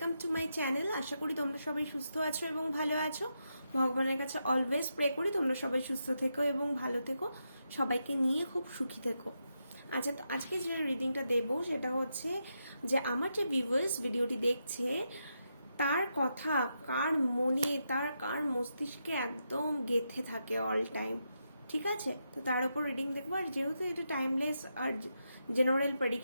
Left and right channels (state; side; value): inverted; both; correlation -0.84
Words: to my channel. আশা করি তোমরা সবাই সুস্থ আছো এবং ভালো আছো। ভগবানের কাছে অলওয়েজ প্রে করি তোমরা সবাই সুস্থ থেকো এবং ভালো থেকো, সবাইকে নিয়ে খুব সুখী থেকো। আচ্ছা, তো আজকে যে রিডিংটা দেবো সেটা হচ্ছে যে আমার যে ভিউয়ার্স ভিডিওটি দেখছে তার কথা কার মনে, কার মস্তিষ্কে একদম গেঁথে থাকে অল টাইম। ঠিক আছে, তো তার উপর রিডিং দেখবো। আর যেহেতু এটা টাইমলেস আর জেনারেল